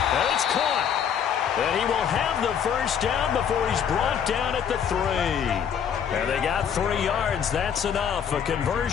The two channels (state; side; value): quieter; right; 8.1 dB